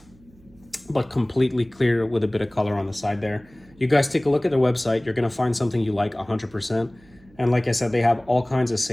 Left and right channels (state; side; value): noise; right; hum, 28 dB below the sound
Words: but completely clear with a bit of color on the side there. You guys take a look at their website. You're gonna find something you like 100%. And like I said, they have all kinds of